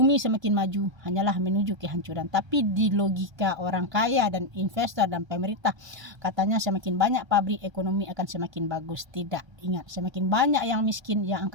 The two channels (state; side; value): late; left; 1.3 ms